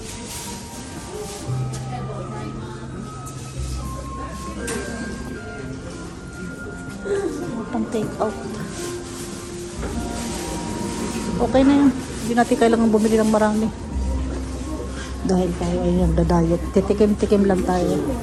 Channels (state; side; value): identical; both; correlation 1.00